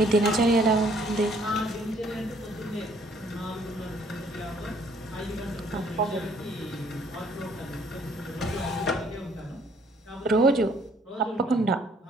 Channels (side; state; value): both; normal; correlation 0.62